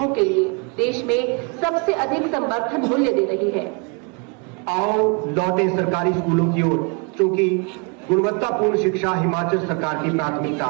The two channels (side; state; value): left; quieter; 33.6 dB